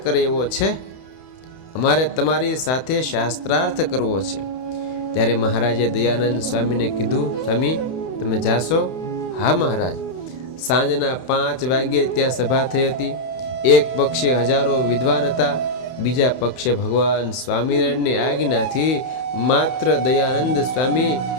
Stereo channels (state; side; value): late; right; 31 ms